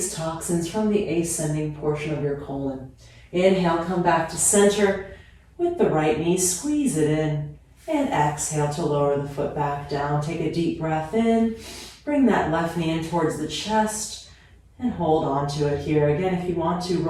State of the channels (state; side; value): identical; both; correlation 1.00